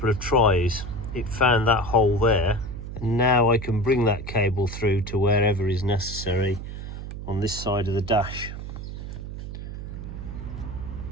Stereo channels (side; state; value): right; noise; hum, 8 dB below the sound